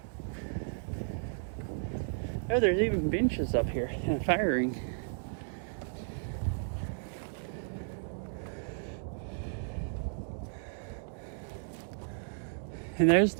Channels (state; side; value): silent; left; digital silence